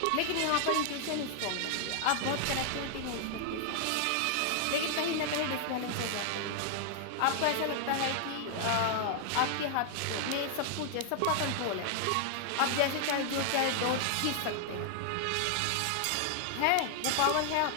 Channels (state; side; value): different; both; correlation 0.00